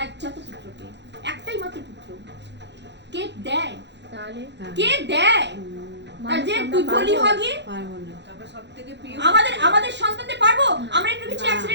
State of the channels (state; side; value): late; left; 0.51 ms